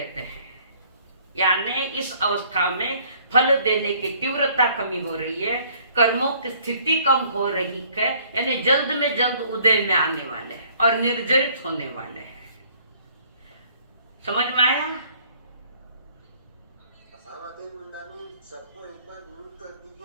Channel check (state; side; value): inverted; both; correlation -0.59